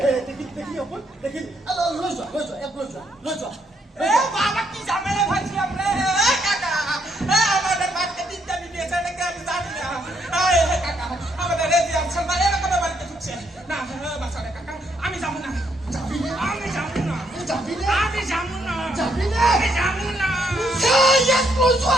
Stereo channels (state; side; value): normal; both; correlation 0.74